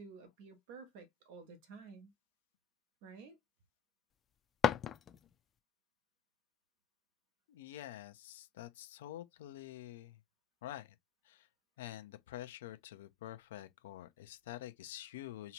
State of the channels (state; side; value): quieter; right; 8.4 dB